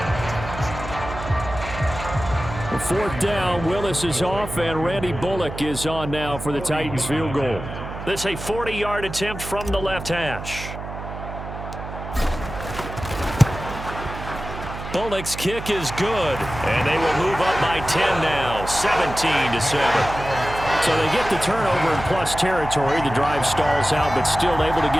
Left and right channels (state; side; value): noise; right; hum, 9 dB below the sound